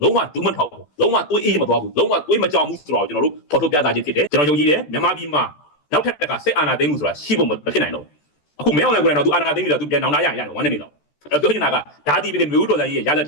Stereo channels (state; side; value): late; right; 14 ms